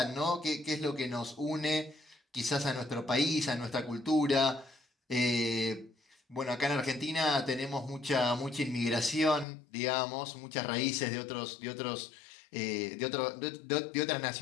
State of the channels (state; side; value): drops out; right; at 9.5 s